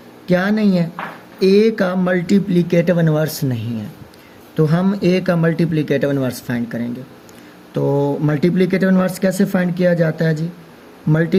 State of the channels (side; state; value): both; identical; correlation 1.00